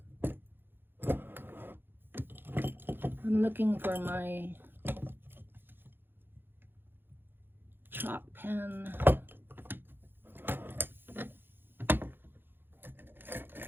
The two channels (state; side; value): late; left; 0.10 ms